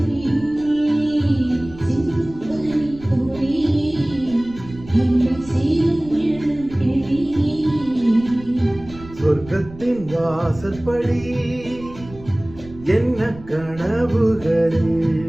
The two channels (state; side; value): noise; right; rumble, 17 dB below the sound